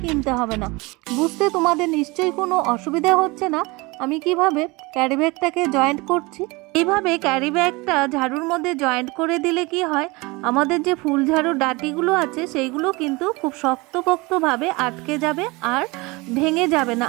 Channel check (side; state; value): left; quieter; 24.6 dB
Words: কিনতে হবে না। বুঝতে তোমাদের নিশ্চয়ই কোনো অসুবিধা হচ্ছে না আমি কিভাবে ক্যারি ব্যাগটাকে জয়েন্ট করছি। এইভাবে ক্যারি ব্যাগটা ঝাড়ুর মধ্যে জয়েন্ট করে দিলে কি হয়, আমাদের যে ফুল ঝাড়ুর ডাঁটিগুলো আছে সেইগুলো কিন্তু খুব শক্তপোক্তভাবে আটকে যাবে আর ভেঙে যাবে না।